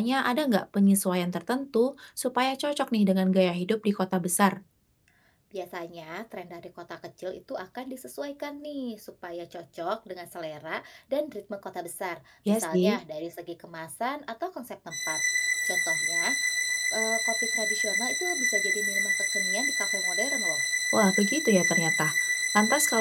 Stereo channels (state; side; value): identical; both; correlation 1.00